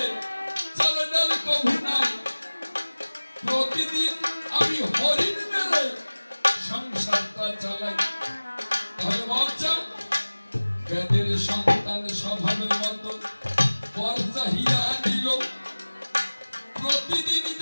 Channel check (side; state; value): both; inverted; correlation -1.00